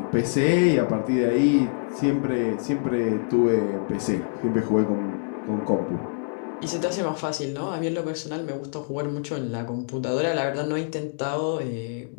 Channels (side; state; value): right; silent; digital silence